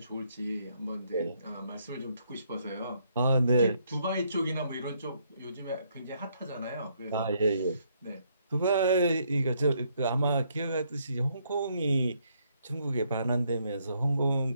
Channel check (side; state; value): both; inverted; correlation -0.72